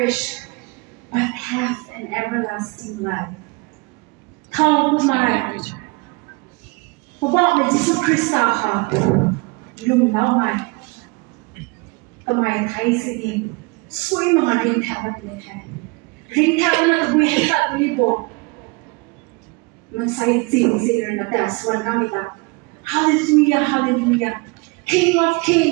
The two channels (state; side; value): quieter; left; 27.3 dB